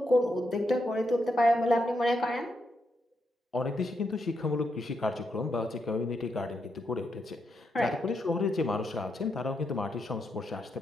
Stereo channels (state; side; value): normal; both; correlation 0.81